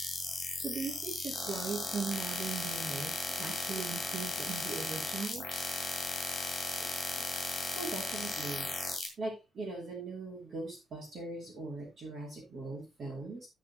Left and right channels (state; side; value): normal; both; correlation 0.75